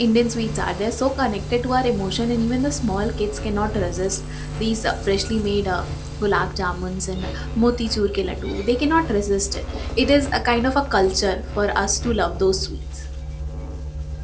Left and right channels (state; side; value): identical; both; correlation 1.00